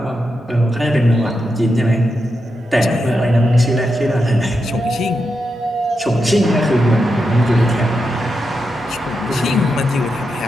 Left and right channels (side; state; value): both; normal; correlation 0.86